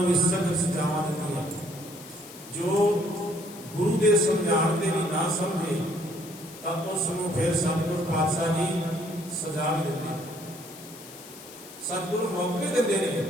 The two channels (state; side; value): noise; left; hiss, 17 dB below the sound